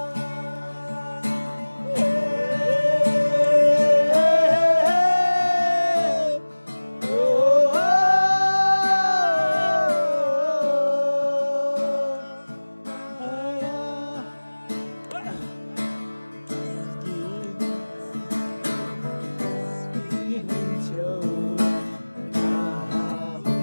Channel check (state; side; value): inverted; both; correlation -1.00